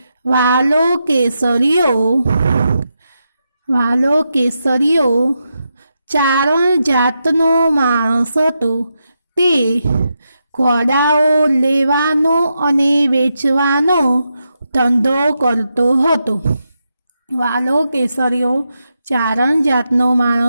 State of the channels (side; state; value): both; inverted; correlation -0.86